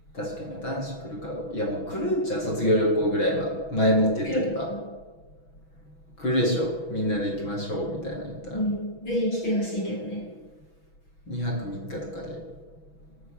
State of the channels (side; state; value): right; late; 6.1 ms